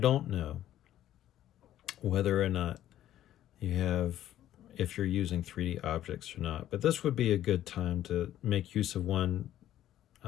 know whether or not if you're using 3D objects or not, but this would be a good time to make use of one,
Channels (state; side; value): quieter; right; 12.4 dB